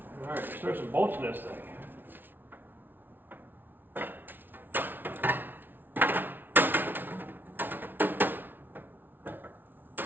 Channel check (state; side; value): late; left; 0.095 ms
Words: All right, let's throw some bolts in this thing.